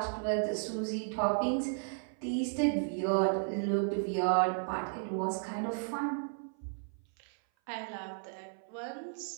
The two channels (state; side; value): silent; left; 55 dB below the other